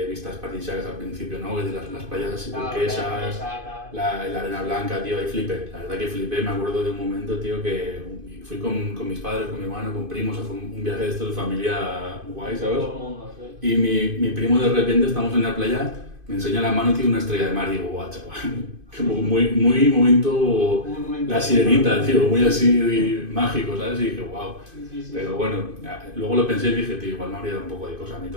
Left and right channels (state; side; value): late; left; 2.5 ms